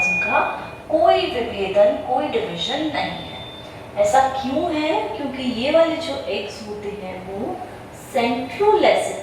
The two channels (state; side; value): identical; both; correlation 1.00